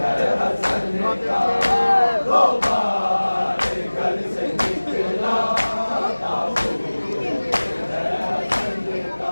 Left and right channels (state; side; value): inverted; both; correlation -1.00